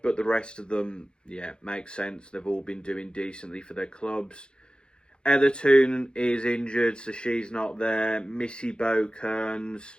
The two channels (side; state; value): right; late; 0.051 ms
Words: But the rest of them, yeah, makes sense. They've all been doing decently for their clubs. Etherton is injured, so she's not there. Missy Bokearns.